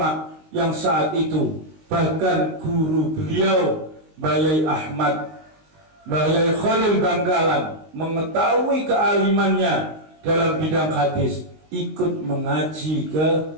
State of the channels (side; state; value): left; late; 19 ms